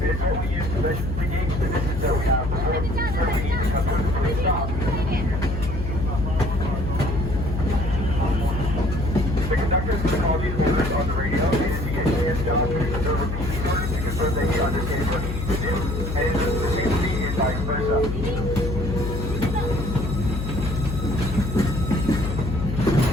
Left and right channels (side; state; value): left; noise; hum, 4 dB below the sound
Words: It is what we use to gauge the distance that we have before we need to come to a complete stop. The conductor is going to call these orders on the radio, and as he gets hands down to repeat these orders to confirm that he understands what he needs to do. And the same thing is vice versa.